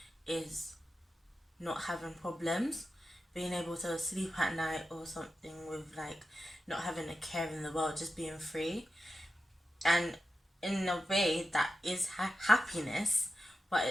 is not having problems, being able to sleep at night or something, with like not having a care in the world, just being free. And in a way, that is happiness, but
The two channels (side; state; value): both; normal; correlation 0.91